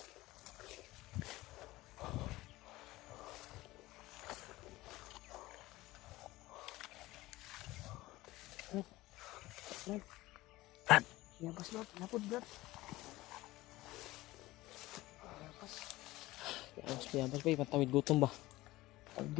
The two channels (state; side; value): quieter; right; 18.4 dB